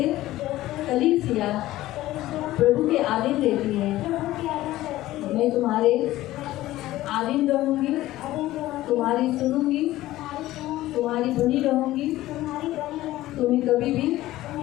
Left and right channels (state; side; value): quieter; right; 15.9 dB